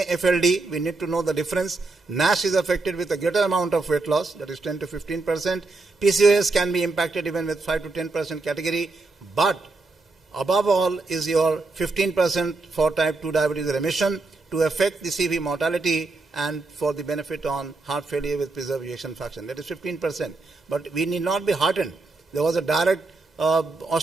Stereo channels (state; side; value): quieter; left; 3.5 dB